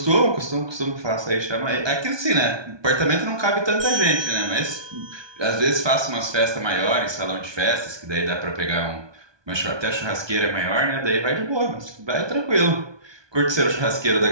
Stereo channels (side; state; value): left; late; 1.2 ms